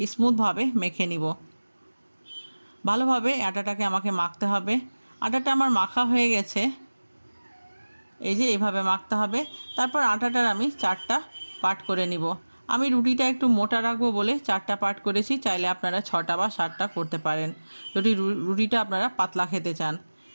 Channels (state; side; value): inverted; both; correlation -1.00